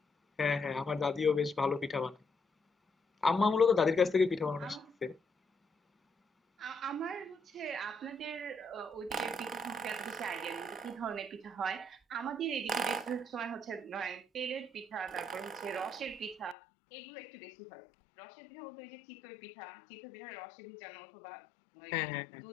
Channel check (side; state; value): right; drops out; at 16.6 s